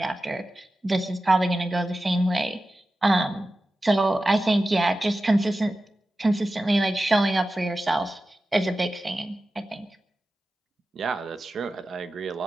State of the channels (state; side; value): normal; both; correlation 0.94